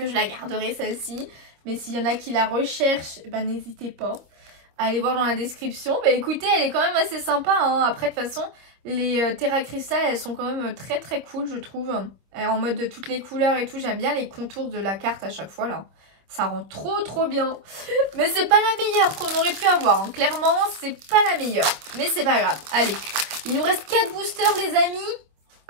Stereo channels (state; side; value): late; left; 25 ms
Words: je la garderai celle-ci. Mais s'il y en a qui la recherchent, eh ben n'hésitez pas. Allez voir dans la description. Bah écoutez, elle est quand même assez sympa. Hein. Après, de toute façon, les Terra Crystal, elles sont quand même très très cool, je trouve. En mode de toutes les couleurs et tout. J'aime bien les contours de la carte à chaque fois, là. Ça rend trop bien. Mais c'est pas la meilleure qu'on aurait pu avoir. Hein. Clairement, c'est pas la meilleure. Mais c'est pas grave. Allez, il nous reste 4 boosters, les amis.